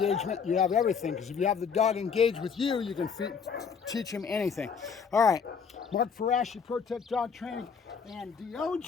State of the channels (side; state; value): right; quieter; 6.2 dB